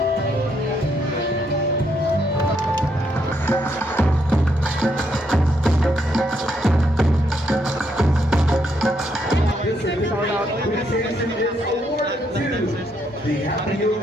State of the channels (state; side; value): normal; both; correlation 0.75